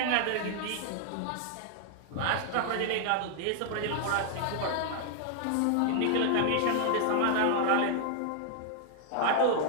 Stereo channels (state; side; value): different; both; correlation 0.00